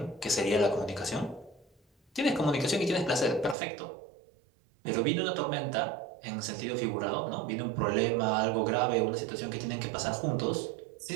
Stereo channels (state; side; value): drops out; left; at 3.6 s